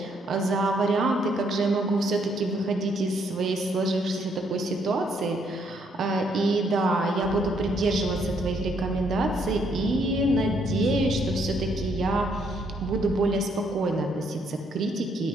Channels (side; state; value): both; normal; correlation 0.71